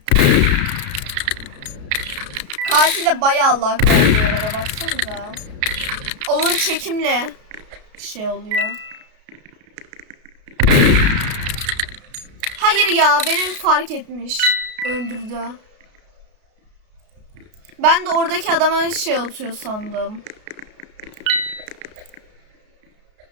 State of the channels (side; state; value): left; late; 33 ms